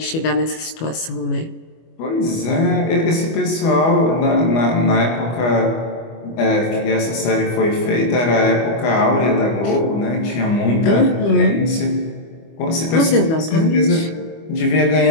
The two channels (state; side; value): late; right; 25 ms